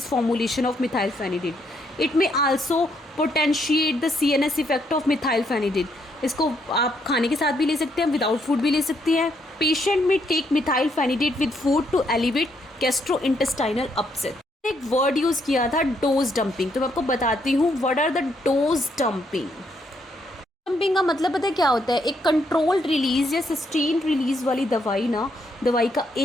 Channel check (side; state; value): both; normal; correlation 0.74